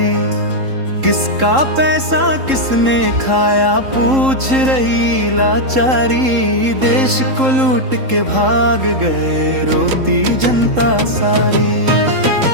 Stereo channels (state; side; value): late; left; 3.7 ms